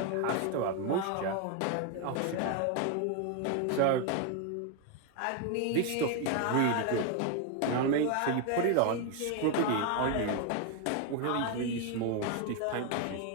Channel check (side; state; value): both; different; correlation 0.01